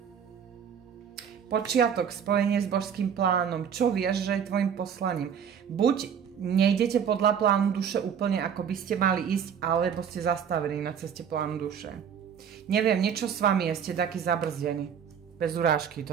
Počiatok, spojenie s božským plánom. Čo vieš, že je tvojim poslaním? Buď nejdete podľa plánu duše úplne ako by ste mali ísť, alebo ste zastavení na ceste plánu duše. Neviem, niečo s vami je, ste taký zabrzdení. Bez urážky,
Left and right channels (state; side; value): quieter; left; 7.9 dB